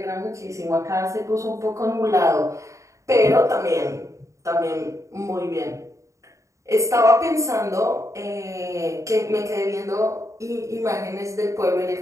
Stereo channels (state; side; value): late; left; 0.15 ms